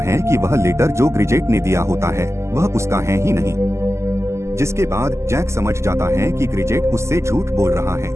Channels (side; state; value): left; late; 0.13 ms